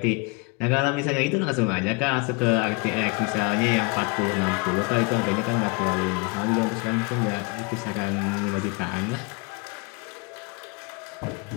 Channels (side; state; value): right; quieter; 28.3 dB